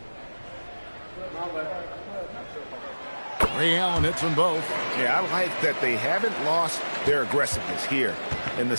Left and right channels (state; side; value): inverted; both; correlation -1.00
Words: Ray Allen hits them both. Yeah, I like that they haven't lost their aggressiveness here in the